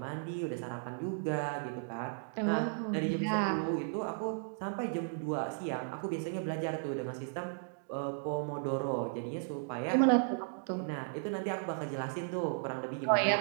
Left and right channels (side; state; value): left; silent; digital silence